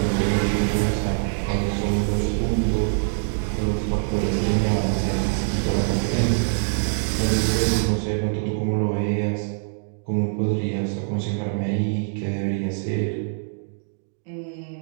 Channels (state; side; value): silent; left; digital silence